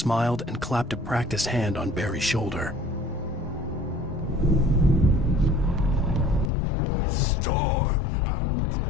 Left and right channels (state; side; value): drops out; right; at 6.5 s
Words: and clapped a practiced hand on Barry's shoulder. It's my store. I'm